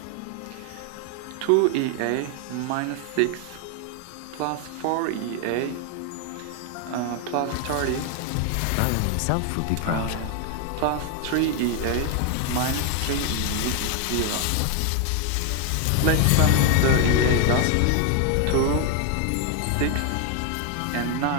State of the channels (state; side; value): different; both; correlation 0.01